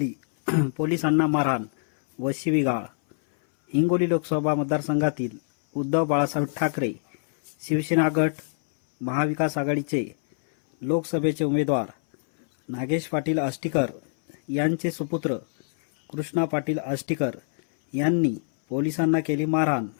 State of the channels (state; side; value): silent; right; 60 dB below the other